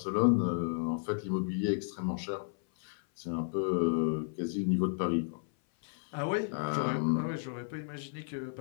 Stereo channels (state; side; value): silent; right; 56 dB below the other